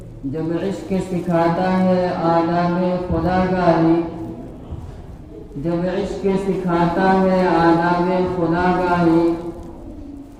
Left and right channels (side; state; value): both; identical; correlation 1.00